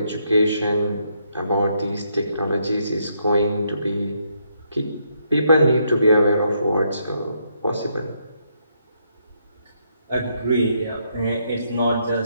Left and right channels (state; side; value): inverted; both; correlation -0.75